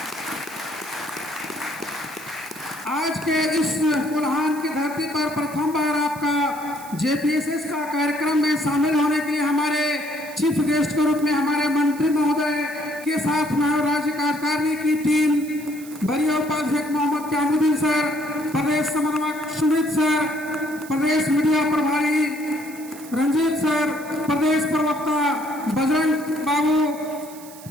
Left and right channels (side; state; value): right; noise; hiss, 18 dB below the sound